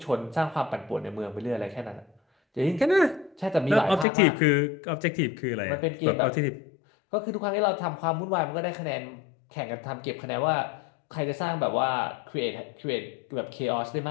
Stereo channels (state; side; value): drops out; right; at 4.0 s